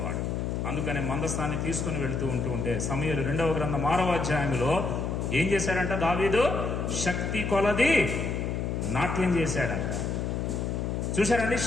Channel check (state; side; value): noise; left; hum, 1 dB below the sound